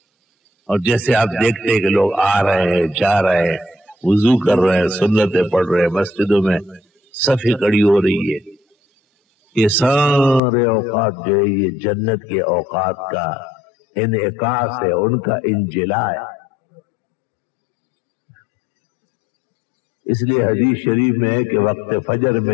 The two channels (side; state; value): right; drops out; at 10.4 s